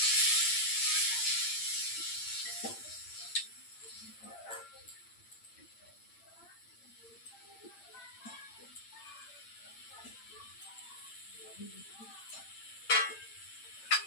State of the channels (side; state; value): right; late; 8.8 ms